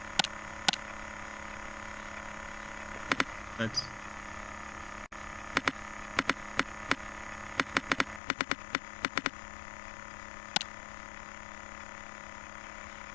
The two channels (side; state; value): right; drops out; at 8.2 s